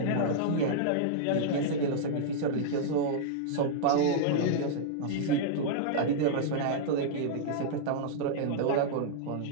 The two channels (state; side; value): different; both; correlation -0.02